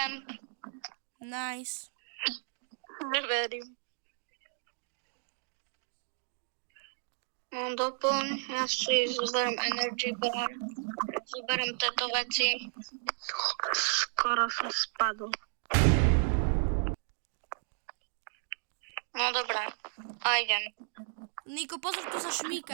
Nice. Neverím. No doplň, ja si zoberiem energy bar, zoberiem tieto veci. Skoro som spadol. No dobré, a idem. Niko, pozor, tu sa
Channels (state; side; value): silent; left; digital silence